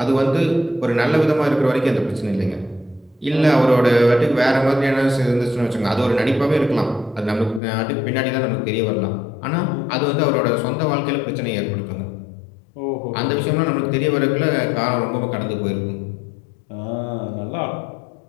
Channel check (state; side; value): drops out; right; at 7.6 s